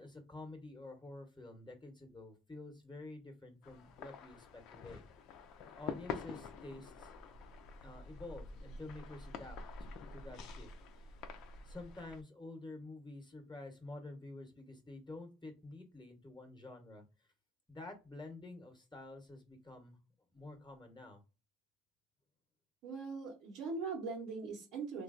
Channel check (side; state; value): both; normal; correlation 0.53